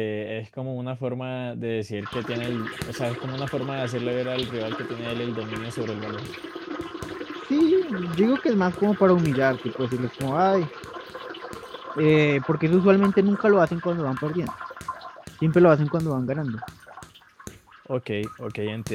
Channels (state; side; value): identical; both; correlation 1.00